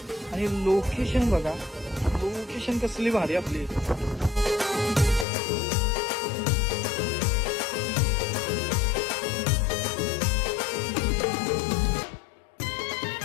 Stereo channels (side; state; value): right; drops out; at 5.2 s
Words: आणि लोकेशन बघा, लोकेशन कसली भारी आपली.